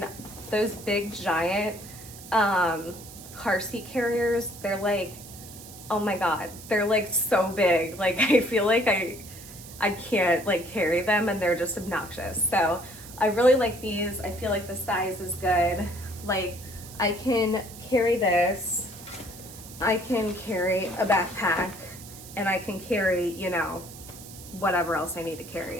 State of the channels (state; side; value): noise; right; hiss, 16 dB below the sound